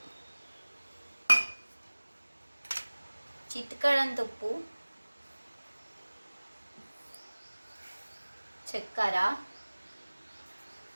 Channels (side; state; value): both; inverted; correlation -1.00